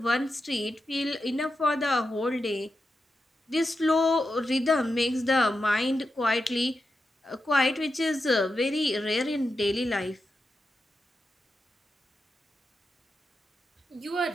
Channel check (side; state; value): both; normal; correlation 0.89